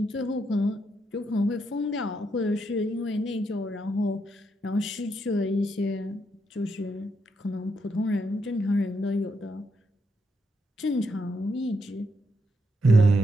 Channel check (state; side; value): normal; both; correlation 0.79